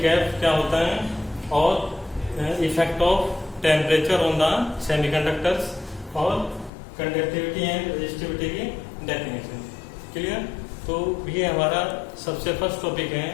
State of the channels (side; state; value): right; drops out; at 6.7 s